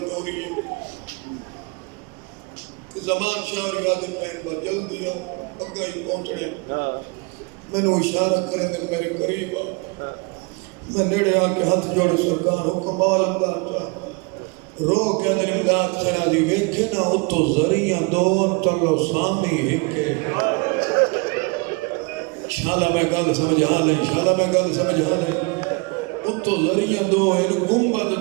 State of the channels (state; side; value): quieter; left; 30.2 dB